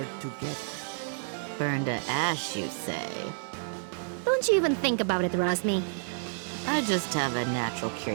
together. Burn to ash, you say? Don't you even think about it, Razmi. I just have a natural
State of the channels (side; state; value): left; silent; digital silence